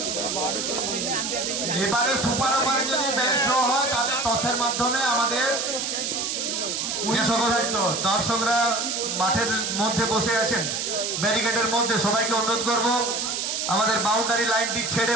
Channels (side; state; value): right; noise; hiss, 2 dB below the sound